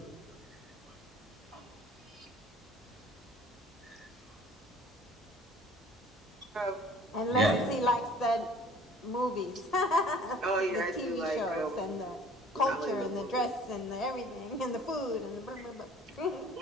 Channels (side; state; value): both; normal; correlation 0.50